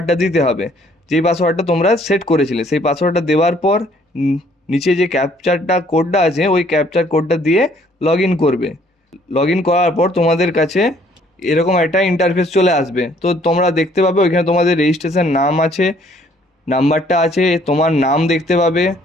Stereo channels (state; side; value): normal; both; correlation 0.62